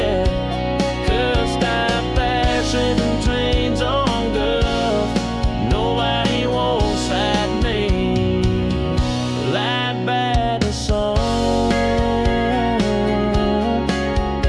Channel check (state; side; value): identical; both; correlation 1.00